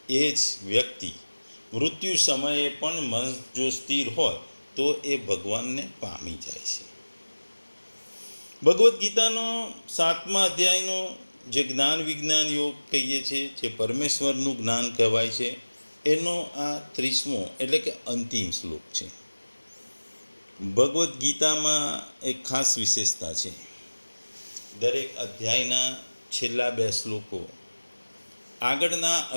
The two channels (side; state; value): both; inverted; correlation -1.00